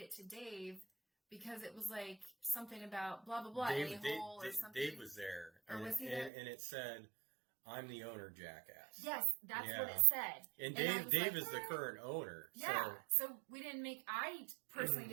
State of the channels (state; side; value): drops out; left; at 6.3 s